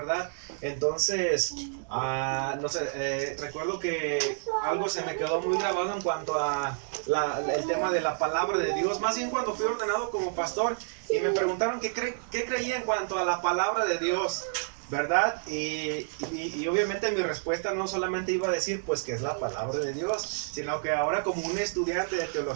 Entonces, no sé, recuerdo que algo se me quedó muy grabado en cuanto a el tema de la palabra de Dios, más bien cuando fui ordenado como pastor y me preguntaron qué creía en cuanto a la palabra de Dios, ¿verdad? Y obviamente mi respuesta no solamente iba a decir pues que es la palabra de Dios, sino que ahora como un estudiante de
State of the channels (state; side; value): silent; left; digital silence